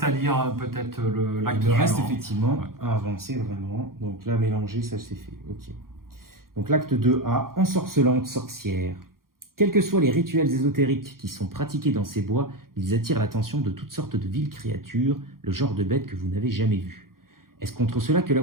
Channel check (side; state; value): left; late; 0.92 ms